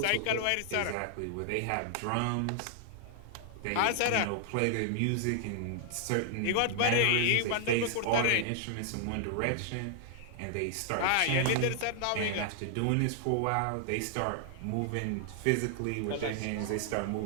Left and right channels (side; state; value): both; different; correlation -0.01